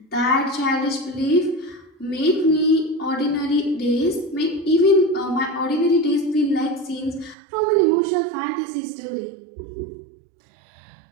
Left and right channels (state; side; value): drops out; left; at 7.4 s